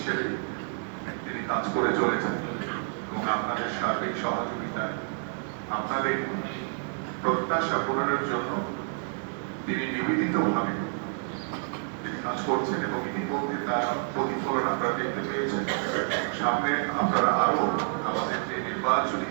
তিনি কাজ করে চলেছেন এবং আপনাদের সার্বিক সহযোগিতা, আপনাদের প্রত্যাশা পূরণের জন্য তিনি নিবেদিতভাবে তিনি কাজ করছেন এবং ইতিমধ্যে তার প্রতিফলন আপনারা দেখতে পেয়েছেন। সামনে আপনারা আরো আমাদের যে নির্বাচনী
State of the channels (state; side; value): silent; left; 59 dB below the other